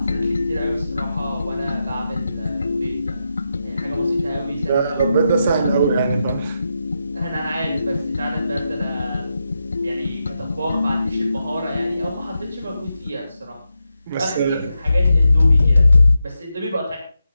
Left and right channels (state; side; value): inverted; both; correlation -0.87